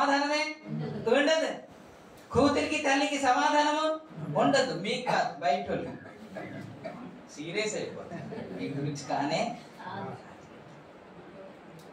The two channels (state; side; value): identical; both; correlation 1.00